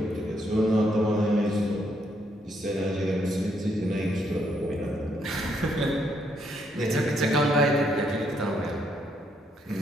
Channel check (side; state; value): both; normal; correlation 0.74